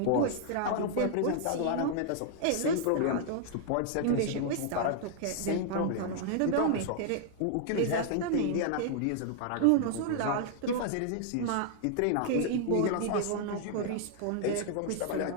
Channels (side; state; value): both; different; correlation 0.00